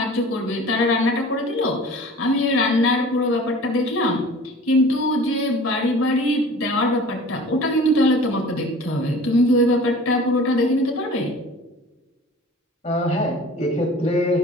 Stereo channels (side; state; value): both; normal; correlation 0.43